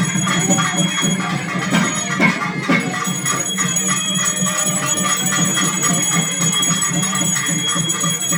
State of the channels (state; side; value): identical; both; correlation 1.00